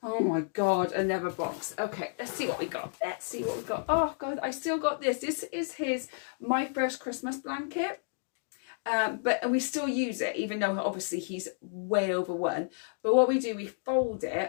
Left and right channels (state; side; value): silent; right; digital silence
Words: Oh my God, another box. Okay, let's see what we got. Let's see what we got. Oh God, I still got this. This is his My First Christmas blanket. But we still use it, even though obviously he's way over 1. But what we do, we fold